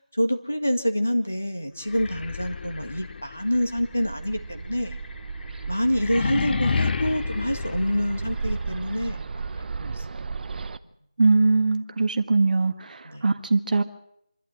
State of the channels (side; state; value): both; inverted; correlation -0.94